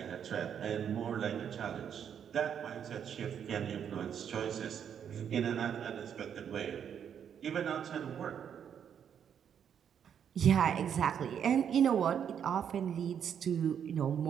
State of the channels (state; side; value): quieter; left; 8.3 dB